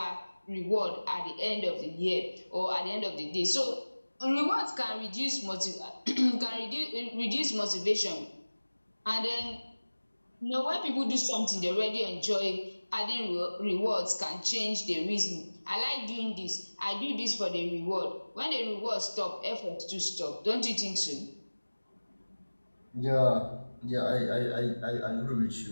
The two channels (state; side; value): inverted; both; correlation -1.00